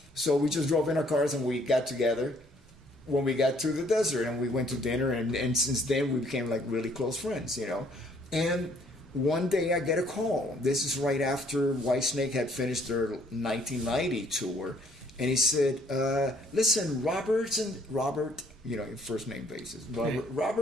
So we just drove in our cars and we got together when we got to the desert, and we went to dinner, and since then we became like really close friends, And one day I get a call. This is right after Whitesnake had finished their 1990 tour. And he said, "Listen, Robert, first name basis.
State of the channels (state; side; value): normal; both; correlation 0.63